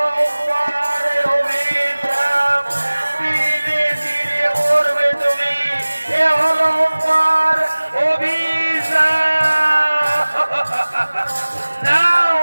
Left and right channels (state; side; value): inverted; both; correlation -1.00